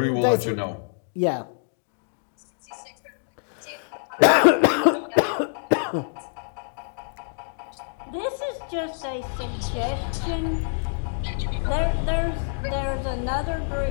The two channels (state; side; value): silent; right; digital silence